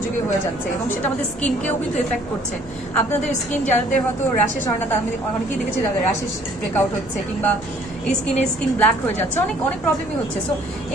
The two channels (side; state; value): left; noise; hum, 21 dB below the sound